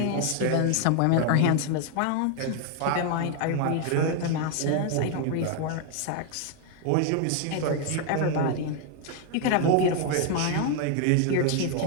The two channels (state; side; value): different; both; correlation 0.00